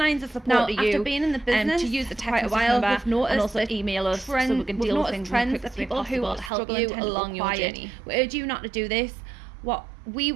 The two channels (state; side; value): drops out; left; at 6.5 s